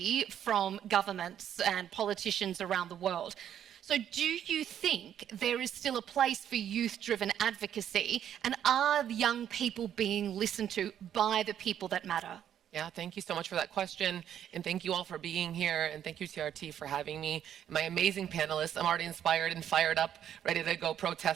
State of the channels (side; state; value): left; quieter; 9.9 dB